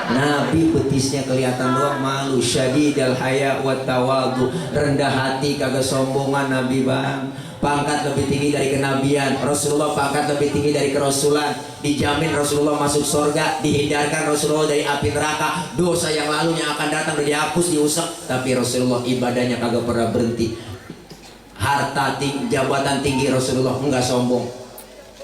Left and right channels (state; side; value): identical; both; correlation 1.00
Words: Nabi betisnya kelihatan doang malu. Syadidal haya wa tawadu, rendah hati kagak sombongan Nabi bang. Pangkat lebih tinggi dari kenabian. Rasulullah pangkat lebih tinggi dari kerasulan. Dijamin Rasulullah masuk surga. Dihindarkan Rasulullah dari api neraka. Dosa yang lalu yang akan datang udah dihapus, diusap. Tapi Rasulullah ibadahnya kagak pernah berhenti. Harta tinggi, jabatan tinggi Rasulullah enggak sombong.